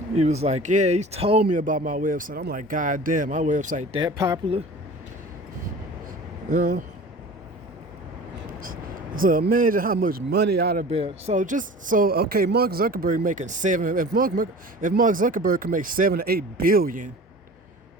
He was like, yeah, he told me about my website. I'm like, God damn, my website that popular? You know? So imagine how much money I'd have been. Okay, Mark Zuckerberg making if Mark Zuckerberg can make 7 to 8 billion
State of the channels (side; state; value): both; normal; correlation 0.40